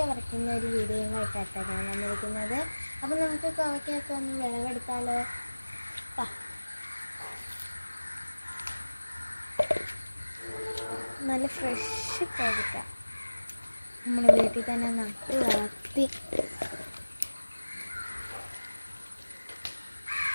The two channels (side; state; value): both; inverted; correlation -1.00